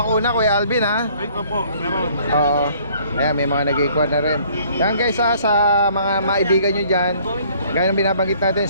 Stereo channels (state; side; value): inverted; both; correlation -0.59